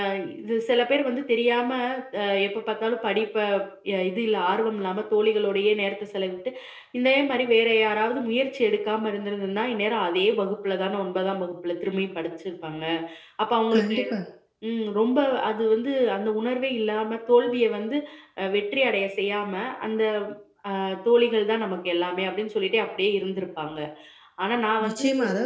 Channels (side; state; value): both; identical; correlation 1.00